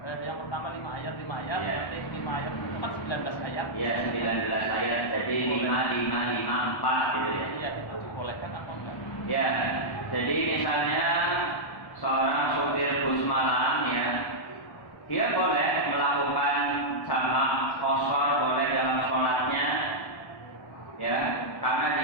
yang pertama 5 ayat nanti 5 ayat itu kan 19 ayat. Iya, 19 ayat. Jadi 5 4 gitu ya. Iya, itu dibolehkan apa enggak? Ya. Jadi misalnya seorang supir bus malam ya, dia boleh melakukan jamak qashar boleh dalam sholatnya ya, karena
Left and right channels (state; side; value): late; right; 1.1 ms